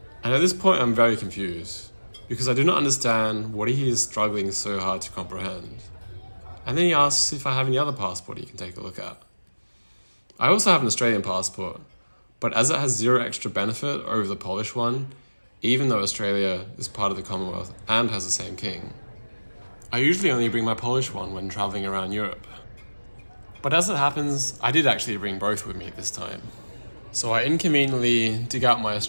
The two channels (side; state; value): both; inverted; correlation -1.00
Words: And at this point, I'm very confused, because I do not understand what he is struggling so hard to comprehend. And then he asks if I have any other passport he can take a look at. I also have an Australian passport, but as it has zero extra benefit over the Polish one, even though Australia is part of the Commonwealth and has the same king, I usually only bring my Polish one when travelling around Europe. But as it happens, I did actually bring both with me this time. So I inconveniently dig out my